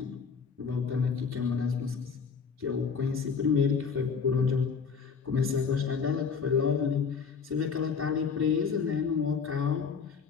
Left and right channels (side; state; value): right; quieter; 5.8 dB